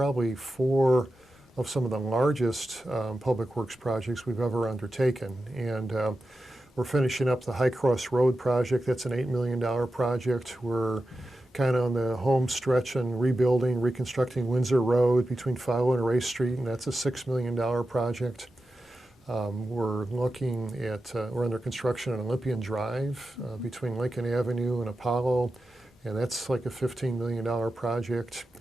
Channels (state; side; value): normal; both; correlation 0.91